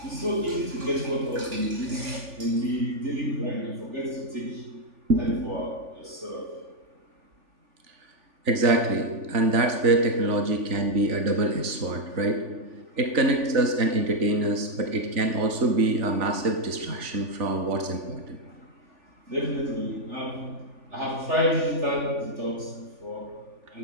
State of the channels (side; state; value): left; late; 3.4 ms